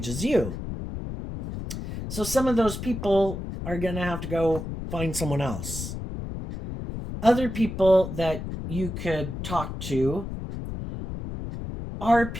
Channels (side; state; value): left; noise; rumble, 7 dB below the sound